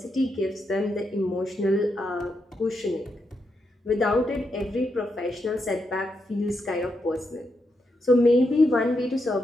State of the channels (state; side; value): normal; both; correlation 0.83